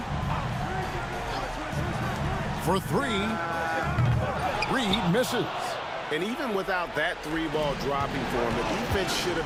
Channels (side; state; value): both; identical; correlation 1.00